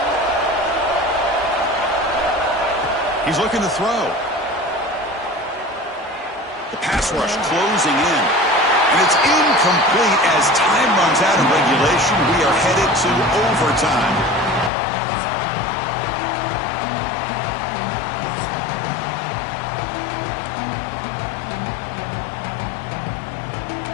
He's looking to throw. The pass rush closing in. And it's incomplete as time runs out of regulation. We are headed to overtime.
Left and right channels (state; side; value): drops out; right; at 14.7 s